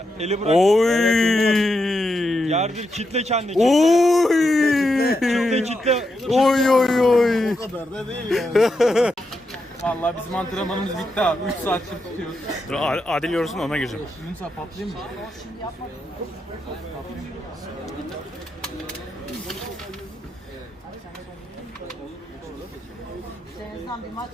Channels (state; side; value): normal; both; correlation 0.84